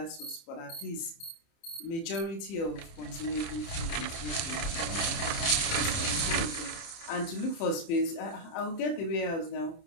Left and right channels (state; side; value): late; right; 30 ms